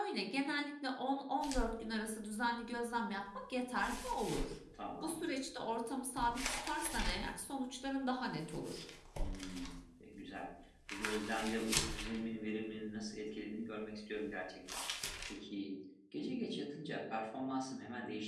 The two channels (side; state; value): both; identical; correlation 1.00